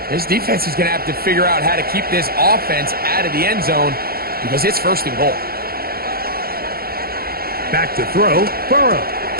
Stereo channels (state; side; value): late; left; 0.44 ms